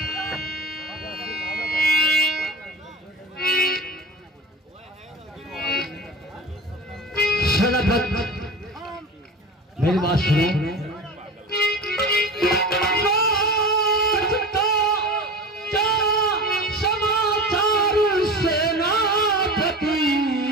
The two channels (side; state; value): both; normal; correlation 0.32